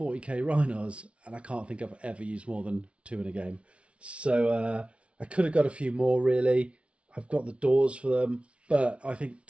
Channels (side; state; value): left; late; 0.061 ms